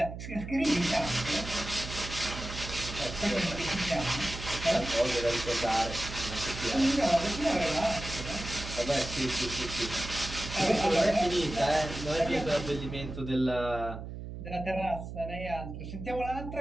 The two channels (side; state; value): right; noise; hum, 9 dB below the sound